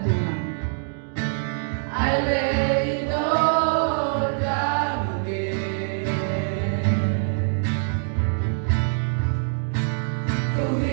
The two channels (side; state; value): left; silent; digital silence